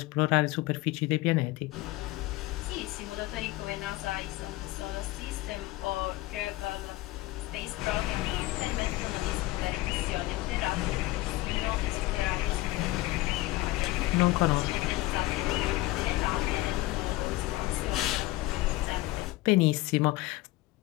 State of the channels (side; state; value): right; quieter; 19.0 dB